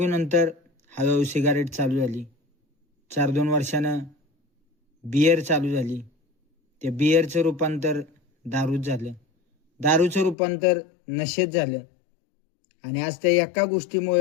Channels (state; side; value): drops out; right; at 10.4 s